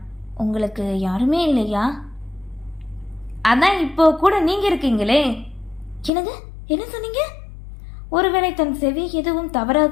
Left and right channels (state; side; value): drops out; right; at 6.1 s